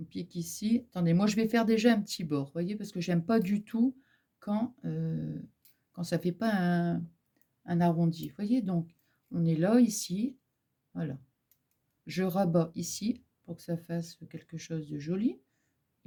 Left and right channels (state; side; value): identical; both; correlation 1.00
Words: pique ici. Attendez, moi je vais faire déjà un petit bord, vous voyez, parce que j'aime pas du tout quand ça fait pas un arrondi. Vous voyez, donc on est là, ici, voilà. Je rabats ici pour que ça fasse quelque chose de joli.